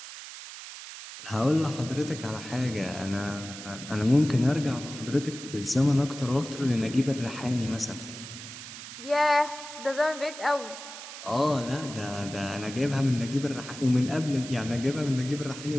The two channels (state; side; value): noise; right; hiss, 12 dB below the sound